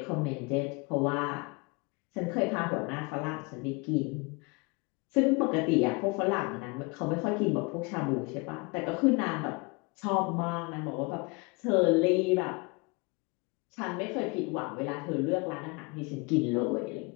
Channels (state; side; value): quieter; right; 28.6 dB